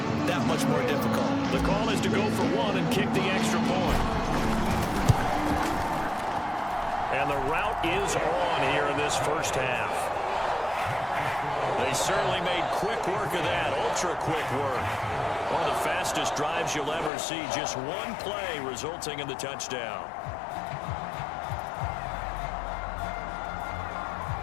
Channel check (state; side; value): drops out; right; at 17.1 s